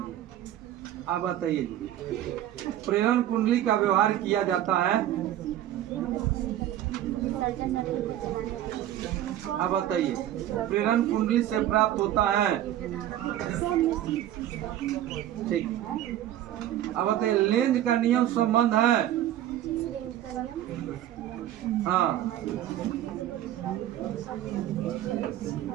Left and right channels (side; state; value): left; quieter; 12.4 dB